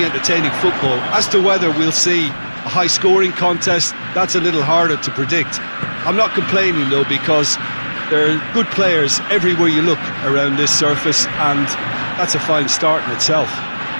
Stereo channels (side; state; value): both; inverted; correlation -1.00